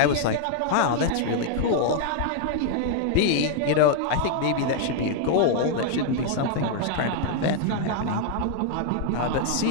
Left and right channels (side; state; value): both; different; correlation 0.00